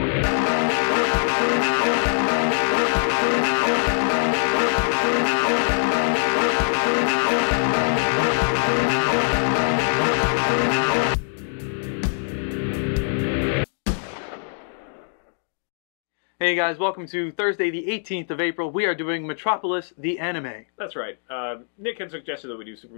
Hey guys, welcome to Thursday the 18th of April. We are doing Metropolis, the anime. That's right. Nick had suggested that we do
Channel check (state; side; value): silent; right; digital silence